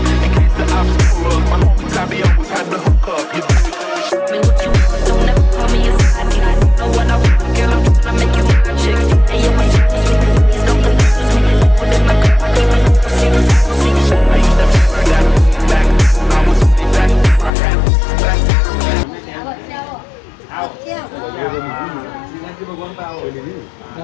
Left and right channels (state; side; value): drops out; right; at 17.5 s